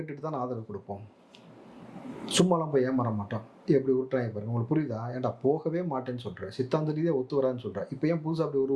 தான் ஆதரவு கொடுப்போம், சும்மாலாம் போய் ஏமாற மாட்டோம். எப்படி விட்டுறாங்க பாருங்க. உங்களுக்கு புரியுதா? ஏன்டா போகவே மாட்டேன்னு சொல்கிறேன், சித்தாந்த ரீதியாக ஒத்து வரான்னு சொல்கிறேன், இப்போ ஏன் புதுசாக அப்படி ஒரு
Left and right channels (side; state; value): both; identical; correlation 1.00